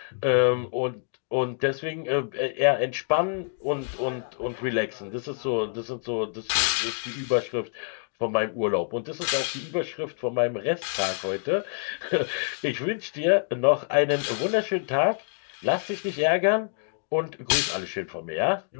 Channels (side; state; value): right; silent; digital silence